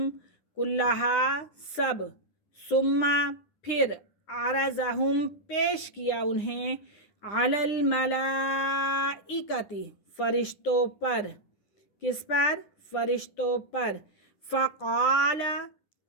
کلہا سب، ثم پھر، عرضہم پیش کیا انہیں، علی الملائکۃ فرشتوں پر، کس پر؟ فرشتوں پر۔ فقال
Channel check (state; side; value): late; right; 9.8 ms